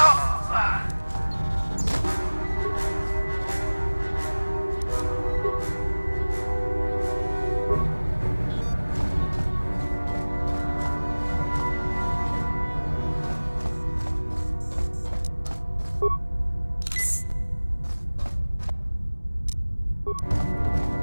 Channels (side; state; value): both; inverted; correlation -1.00